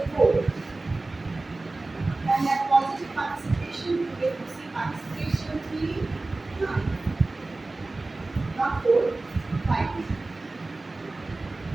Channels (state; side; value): quieter; left; 3.2 dB